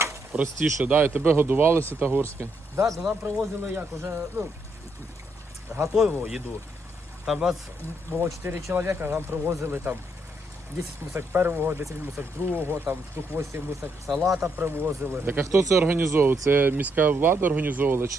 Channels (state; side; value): normal; both; correlation 0.76